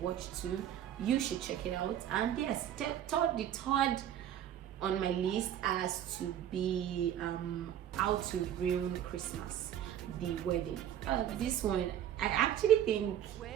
watch too. You should check it out. And yes, the third on my list has to be How to Ruin Christmas, the wedding. This one, I actually think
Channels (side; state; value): left; quieter; 10.6 dB